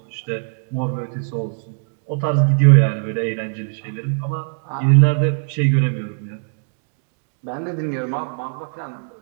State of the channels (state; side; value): silent; left; digital silence